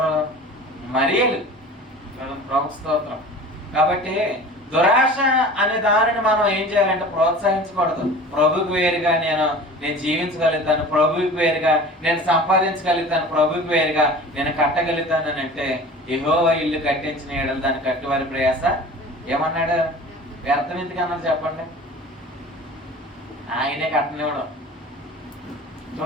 మరియలు. ప్రభు స్తోత్రం. కాబట్టి దురాశ అనే దానిని మనం ఏం చేయాలంటే ప్రోత్సహించకూడదు. ప్రభుకి వేరుగా నేను జీవించగలుగుతాను, ప్రభుకి వేరుగా నేను సంపాదించగలుగుతాను, ప్రభుకి వేరుగా నేను కట్టగలుగుతాను అని అంటే, యెహోవా ఇల్లు కట్టించిన ఏడలు దాన్ని కట్టువారి ప్రయాస ఏమన్నాడు? వ్యర్థం ఎందుకు అన్నారు చెప్పండి? ఆయనే కట్టనివ్వడం.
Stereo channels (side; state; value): both; normal; correlation 0.40